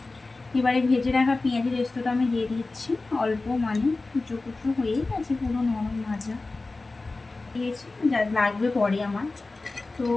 এবারে ভেজে রাখা পেঁয়াজের রেস্তোটা আমি দিয়ে দিচ্ছি অল্প, মানে কুচো কুচো হয়েই গেছে, পুরো নরম ভাজা দিয়েছি, যা লাগবে পরে আমার। তো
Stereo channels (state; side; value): quieter; right; 3.4 dB